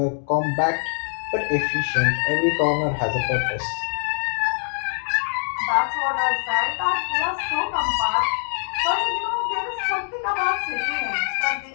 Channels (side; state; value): right; silent; digital silence